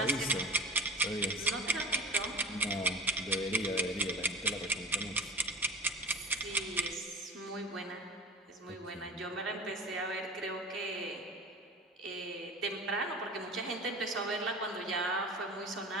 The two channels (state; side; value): normal; both; correlation 0.37